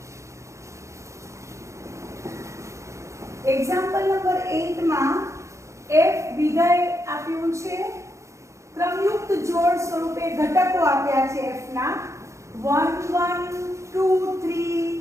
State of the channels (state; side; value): late; left; 0.14 ms